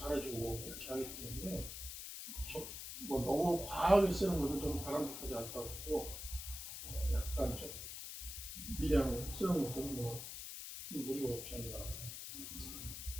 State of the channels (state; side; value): noise; left; hiss, 8 dB below the sound